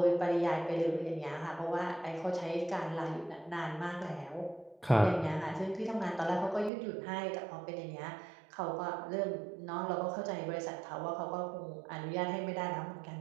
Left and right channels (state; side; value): drops out; left; at 6.7 s